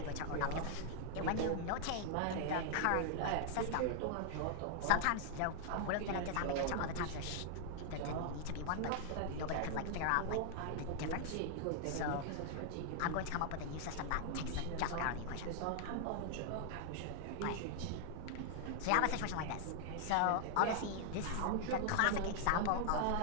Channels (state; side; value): different; both; correlation 0.00